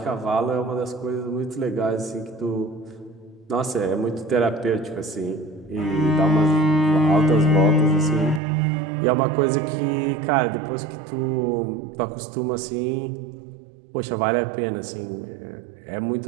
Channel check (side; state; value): left; drops out; at 8.4 s